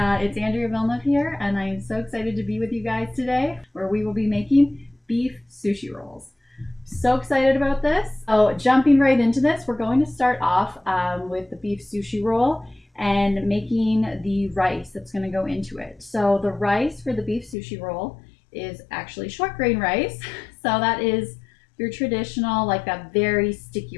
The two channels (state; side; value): drops out; right; at 17.6 s